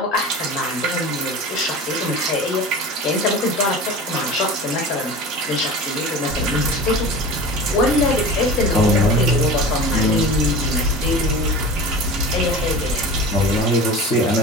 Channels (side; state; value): both; normal; correlation 0.34